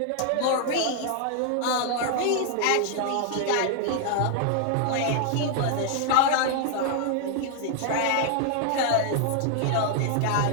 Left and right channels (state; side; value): different; both; correlation 0.00